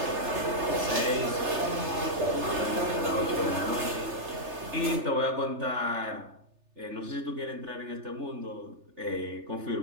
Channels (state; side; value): late; left; 3.3 ms